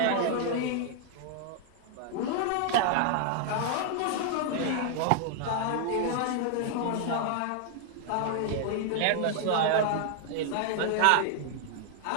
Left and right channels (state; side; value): different; both; correlation 0.00